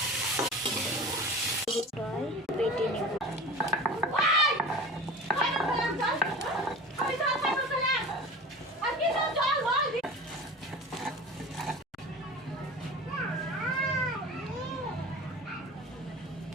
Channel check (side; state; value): both; normal; correlation 0.36